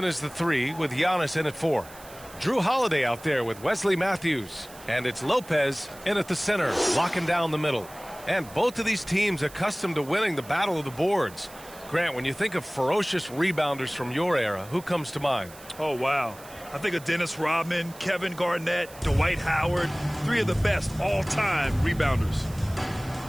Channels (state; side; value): noise; right; hiss, 20 dB below the sound